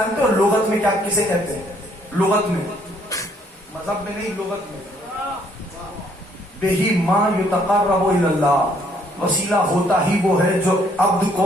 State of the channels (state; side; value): normal; both; correlation 0.66